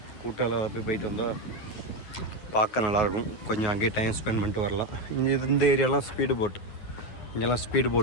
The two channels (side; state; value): right; late; 9.5 ms